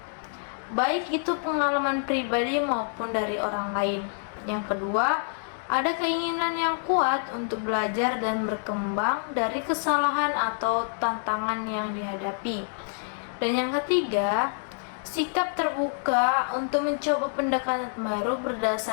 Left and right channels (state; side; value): silent; right; digital silence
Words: baik itu pengalaman pribadi maupun dari orang lain. Yang kedua, ada keinginan yang kuat untuk belajar dan berkembang dari kesalahan atau tantangan yang dihadapi. Dan yang ketiga, sikap terbuka untuk mencoba pendekatan baru